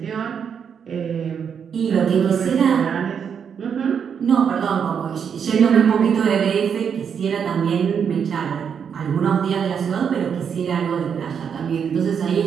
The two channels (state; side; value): quieter; left; 7.3 dB